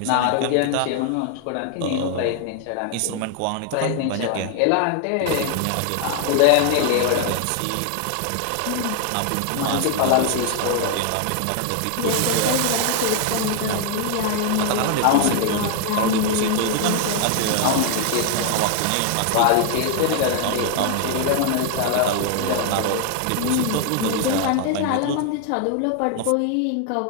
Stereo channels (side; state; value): both; different; correlation 0.00